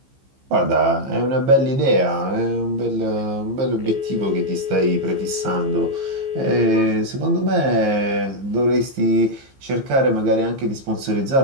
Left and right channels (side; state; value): left; late; 15 ms